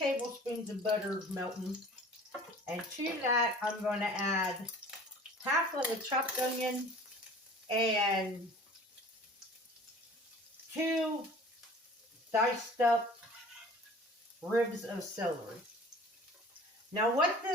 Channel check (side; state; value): both; normal; correlation 0.45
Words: of butter melting, and to that I'm going to add half of a chopped onion and 2 diced up ribs of celery. Now what